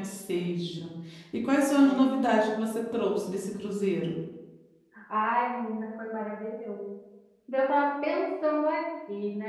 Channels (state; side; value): identical; both; correlation 1.00